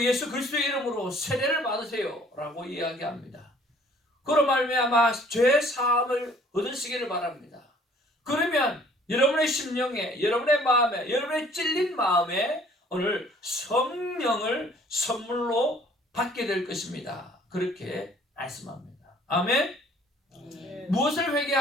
예수 그리스도의 이름으로 세례를 받으세요! 라고 이야기합니다. 그로 말미암아 죄 사함을 얻으시기를 바랍니다. 그러면 여러분의 심령에, 여러분의 마음에, 여러분의 찔린 마음에 오늘 성령을 선물로 받게 될 것입니다. 그렇게 말씀합니다. 아멘? 무엇을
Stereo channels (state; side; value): normal; both; correlation 0.56